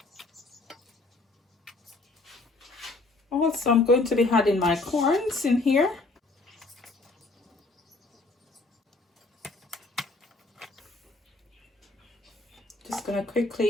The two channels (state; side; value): quieter; right; 3.3 dB